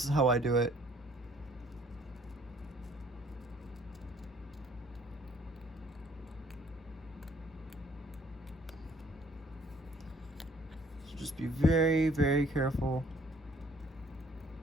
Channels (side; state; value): both; normal; correlation 0.60